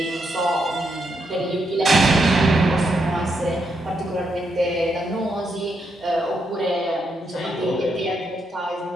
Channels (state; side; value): normal; both; correlation 0.80